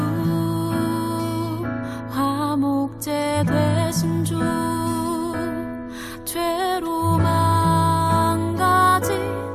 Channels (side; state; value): both; identical; correlation 1.00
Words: 화목제 되신 주 죄로 망가진